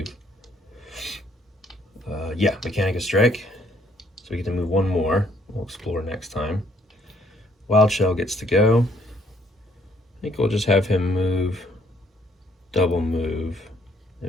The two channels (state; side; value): normal; both; correlation 0.66